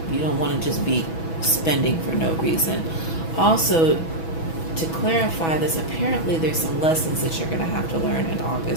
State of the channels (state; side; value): late; right; 6.1 ms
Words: You don't want to just be spending for no reason. Also, to clarify this, apparently there's some lessons that you're going to have to learn in